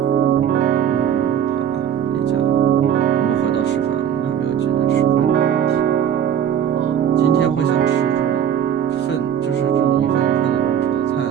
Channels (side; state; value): left; quieter; 9.2 dB